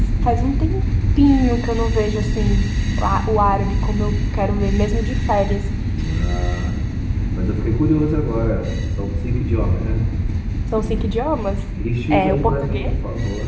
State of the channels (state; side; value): identical; both; correlation 1.00